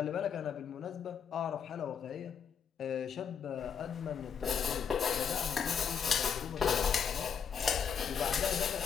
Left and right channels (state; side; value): quieter; right; 7.1 dB